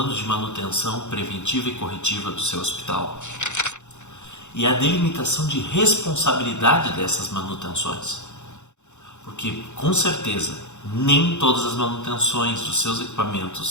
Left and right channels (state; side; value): late; right; 0.83 ms